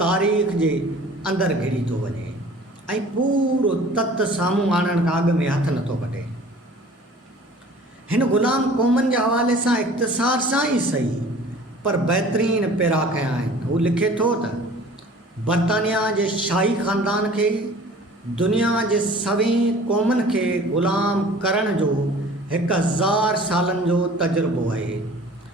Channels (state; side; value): normal; both; correlation 0.47